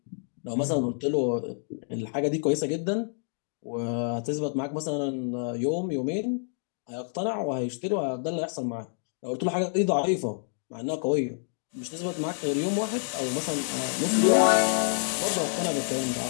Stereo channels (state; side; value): silent; right; digital silence